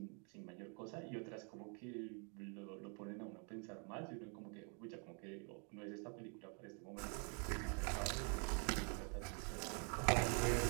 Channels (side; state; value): left; quieter; 38.8 dB